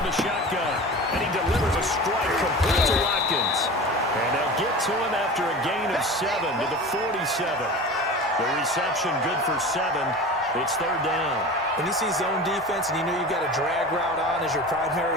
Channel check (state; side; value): normal; both; correlation 0.34